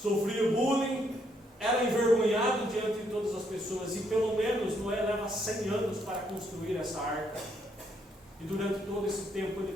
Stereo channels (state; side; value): normal; both; correlation 0.73